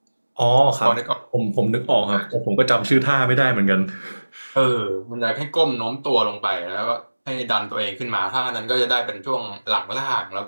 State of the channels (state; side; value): inverted; both; correlation -1.00